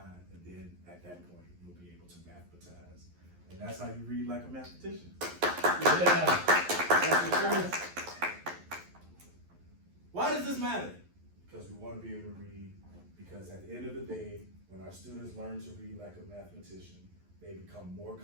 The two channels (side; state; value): left; late; 11 ms